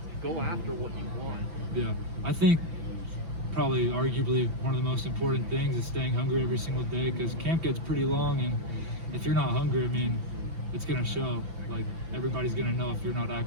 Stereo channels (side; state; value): left; late; 5.9 ms